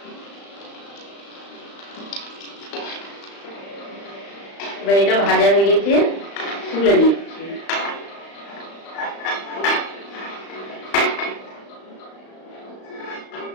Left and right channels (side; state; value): right; late; 35 ms